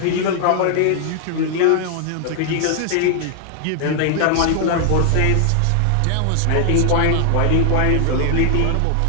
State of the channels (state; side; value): different; both; correlation 0.00